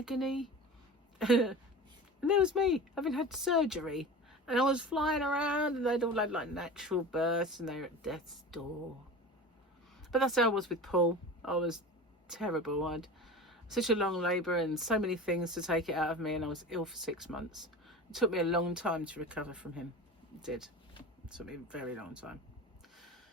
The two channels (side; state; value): both; normal; correlation 0.33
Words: And there was me, having had surgery. And I was flying around, and they'd all had like natural births, and they were at death's door. But that's how I was with Paul. I was terrible. I had such a long labour and so many things to take it out of me, and I was ill for 6 months. It took me a long time to recover from him. It did. It took me a very long time.